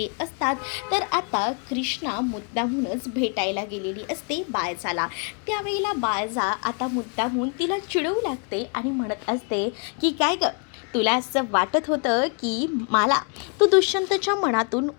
असतात. तर आता कृष्णा मुद्दामूनच भेटायला गेलेली असते बायजाला. त्यावेळेला बायजा आता मुद्दामून तिला चिडवू लागते आणि म्हणत असते की काय ग, तुला असं वाटत होतं की मला तू दुष्यंतच्या मनातून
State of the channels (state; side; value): quieter; right; 38.6 dB